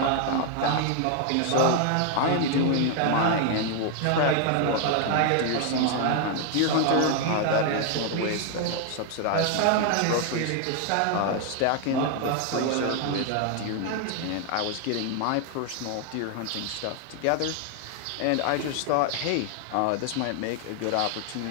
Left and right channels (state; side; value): different; both; correlation 0.00